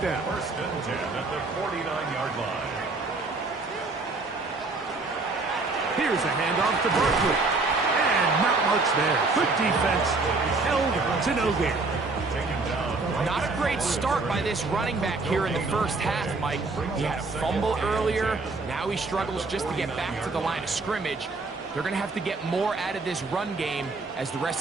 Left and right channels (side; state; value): left; quieter; 3.6 dB